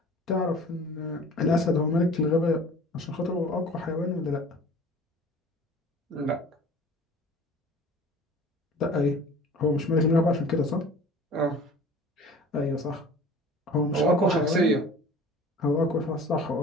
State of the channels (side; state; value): both; normal; correlation 0.44